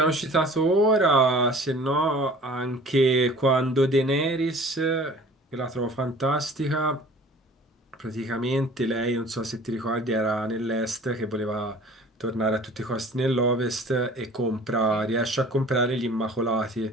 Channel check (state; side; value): normal; both; correlation 0.47